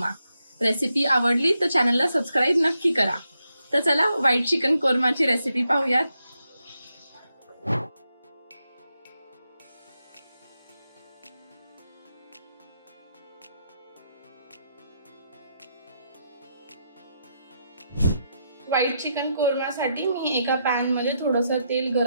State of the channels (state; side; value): inverted; both; correlation -0.82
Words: रेसिपी आवडली तर चॅनलला सबस्क्राइब नक्की करा। तर चला व्हाईट चिकन कोरमाची रेसिपी पाहूयात। व्हाईट चिकन कोरमासाठी मी एका पॅन मध्ये थोडंसं तेल